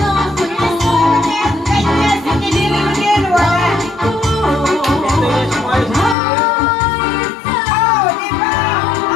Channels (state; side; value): drops out; right; at 6.2 s